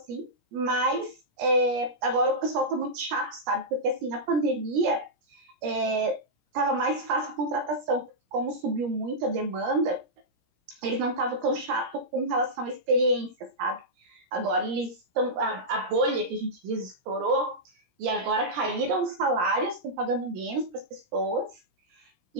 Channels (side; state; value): left; late; 17 ms